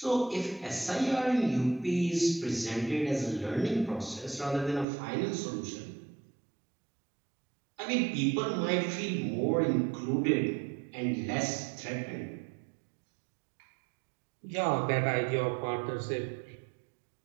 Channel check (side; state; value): left; drops out; at 4.9 s